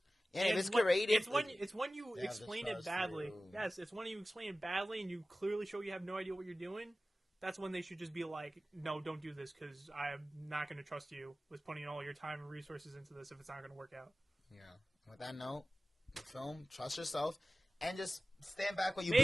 Yeah, if it's curated. It's when you explain it badly. Yes, it's when you explain it badly and you clearly show you have no idea what you're doing. That's when they should just be like, no, don't do this because I'm not going to trust you with putting all your time and resources into this if it's not going to work out. Yeah. With that note, film, trust yourself, and just stand back what you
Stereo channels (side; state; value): both; normal; correlation 0.96